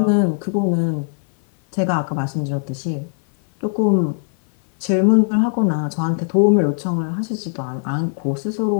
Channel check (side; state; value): right; silent; 56 dB below the other